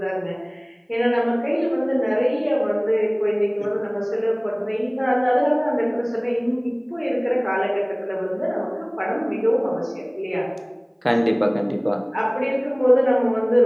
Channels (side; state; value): both; identical; correlation 1.00